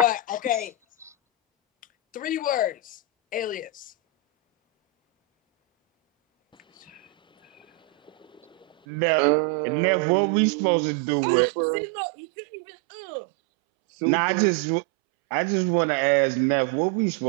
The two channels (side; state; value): left; drops out; at 8.8 s